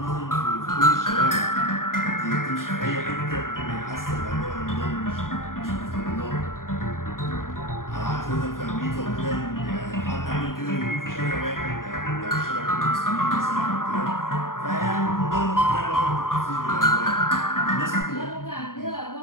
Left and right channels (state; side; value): late; right; 0.91 ms